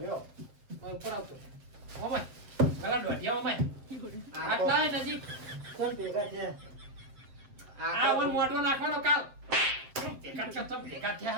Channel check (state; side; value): late; left; 7.5 ms